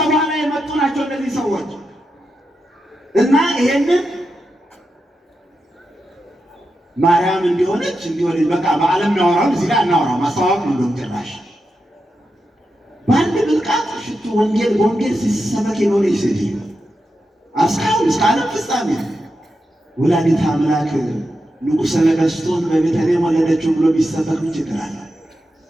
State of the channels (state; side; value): normal; both; correlation 0.88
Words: በኋላ የመጡ ናቸው እነዚህ ሰዎች እና ይሄንን ማርያም እንዲሆነች በቃ በዓለም እናወራው እዚህ ላይ እናወራው ማስተዋወቅ ነው። ጭራሽ በአንድ ብልቃጥ ሽቱ ወንጌል ሲሰበክ የኖረች ሴትዮ እስካሁን እስከ ዓለም ፍጻሜ ወላዲተ አምላክ ንጉሠ ነገሥቱን በቤተልሔም ወለደችው ብሎ ቢሰበክ ምን ችግር አለ?